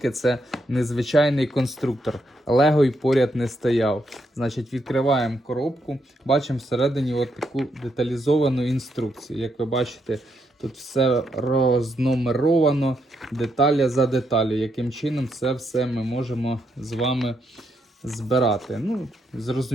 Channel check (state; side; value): normal; both; correlation 0.79